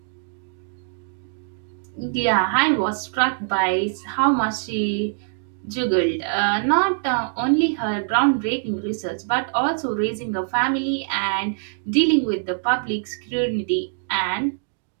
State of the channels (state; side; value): silent; left; digital silence